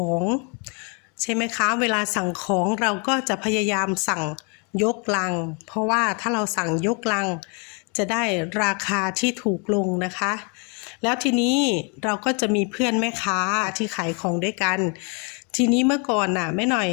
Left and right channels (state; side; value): quieter; right; 34.9 dB